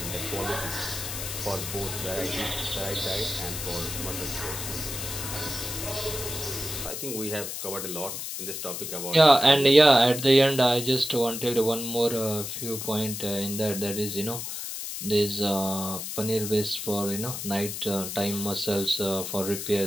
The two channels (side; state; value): left; noise; hiss, 6 dB below the sound